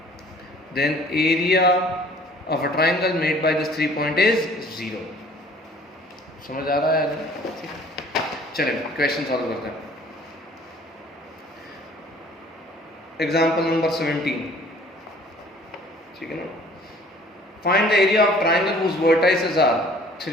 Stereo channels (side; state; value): both; normal; correlation 0.53